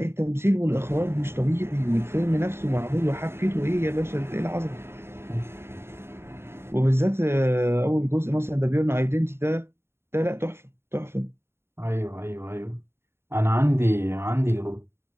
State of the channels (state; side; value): late; left; 0.12 ms